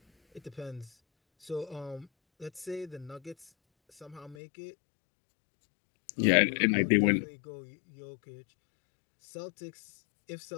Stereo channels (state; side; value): drops out; right; at 4.4 s